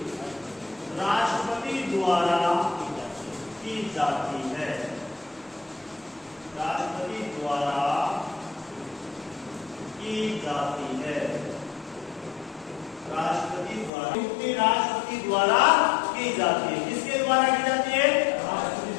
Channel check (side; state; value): right; drops out; at 13.9 s